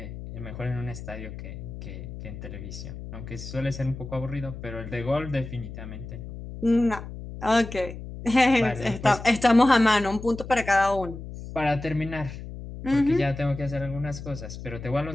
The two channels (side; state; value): left; noise; hum, 11 dB below the sound